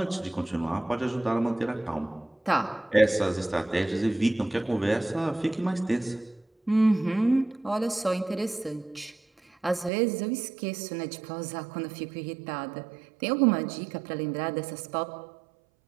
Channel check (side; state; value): left; drops out; at 9.9 s